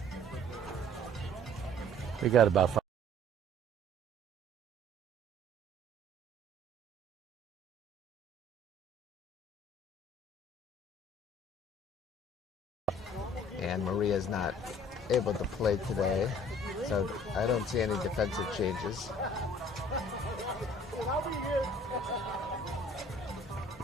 We got about 5. And Maria's not able to play today, so I don't see any defensive changes.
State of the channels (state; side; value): normal; both; correlation 0.53